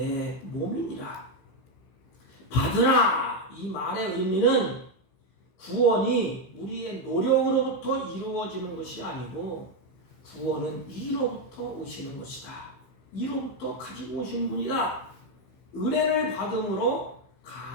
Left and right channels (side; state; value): right; late; 15 ms